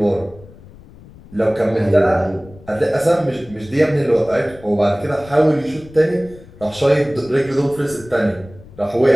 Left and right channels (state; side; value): noise; left; rumble, 21 dB below the sound